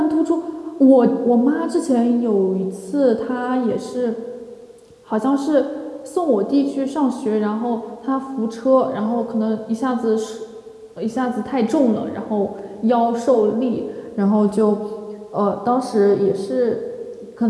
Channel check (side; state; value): both; identical; correlation 1.00